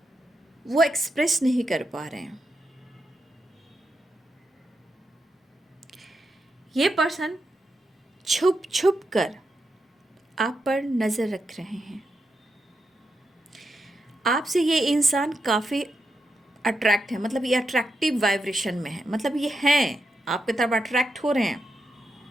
वो एक्सप्रेस नहीं कर पा रहे हैं। ये पर्सन छुप छुप कर आप पर नज़र रख रहे हैं। आपसे ये इंसान काफ़ी अट्रैक्ट है, मतलब ये अट्रैक्टिव वाइब्रेशन में है, मतलब ये हैं आपकी तरफ अट्रैक्ट हो रहे हैं।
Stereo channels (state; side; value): normal; both; correlation 0.85